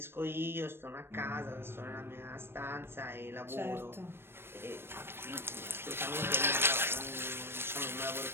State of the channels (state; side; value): late; left; 0.11 ms